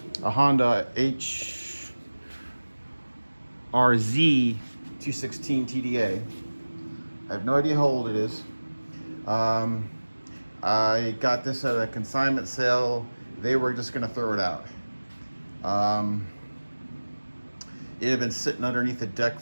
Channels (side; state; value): both; inverted; correlation -1.00